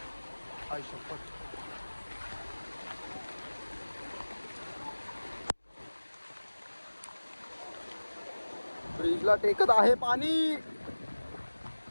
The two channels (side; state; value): both; inverted; correlation -1.00